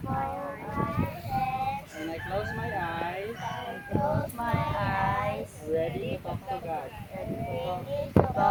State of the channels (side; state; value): both; identical; correlation 1.00